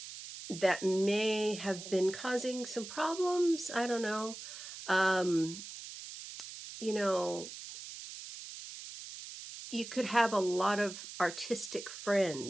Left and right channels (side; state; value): right; noise; hiss, 11 dB below the sound